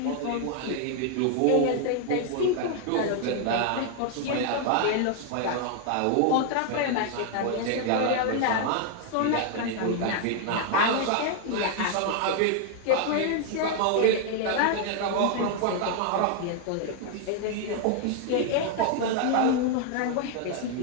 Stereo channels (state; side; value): different; both; correlation 0.00